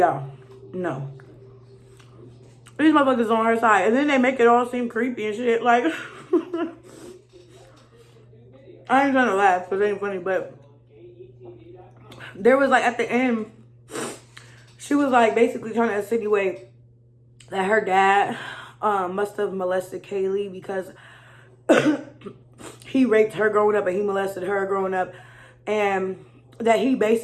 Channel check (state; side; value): identical; both; correlation 1.00